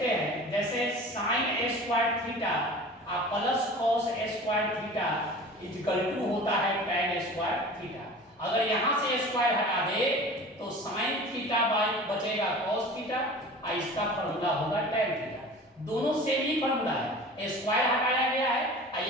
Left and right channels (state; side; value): normal; both; correlation 0.39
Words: हैं जैसे sin square theta plus cos square theta equal to होता है tan स्क्वायर थीटा। अगर यहाँ से स्क्वायर हटा दे तो sin थीटा बाय बचेगा cos थीटा, और इसका फॉर्मूला होगा tan थीटा। दोनों सेम ही फॉर्मूला है, स्क्वायर हटाया गया है और